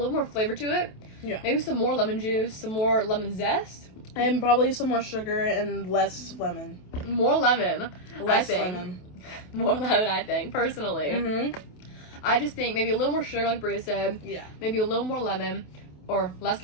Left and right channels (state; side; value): late; right; 28 ms